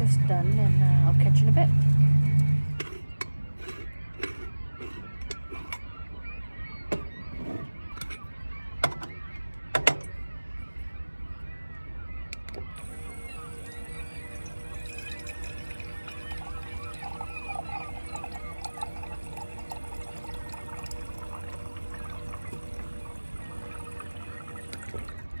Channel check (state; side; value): inverted; both; correlation -1.00